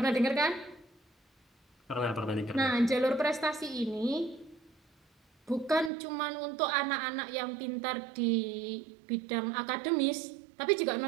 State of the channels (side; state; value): left; drops out; at 5.9 s